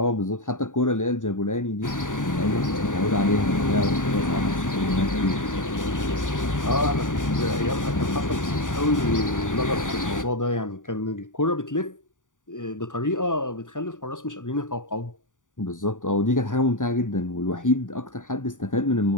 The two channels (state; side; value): late; right; 0.87 ms